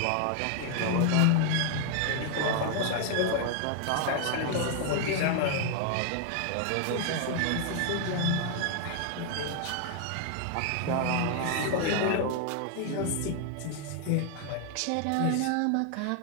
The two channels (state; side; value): different; both; correlation 0.00